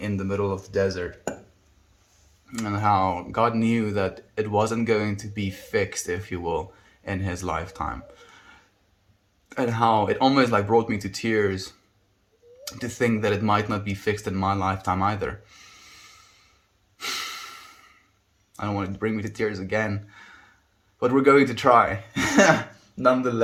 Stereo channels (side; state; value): both; identical; correlation 1.00